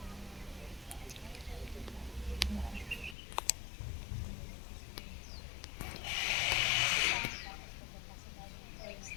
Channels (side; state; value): right; drops out; at 3.2 s